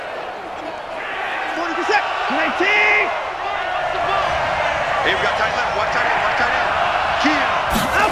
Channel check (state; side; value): identical; both; correlation 1.00